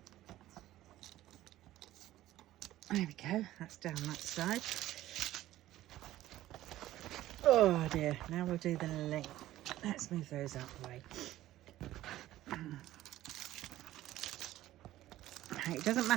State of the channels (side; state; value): left; quieter; 14.6 dB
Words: There we go, that's down that side. Oh dear, now we'll do the length. Let's move those out of the way. It doesn't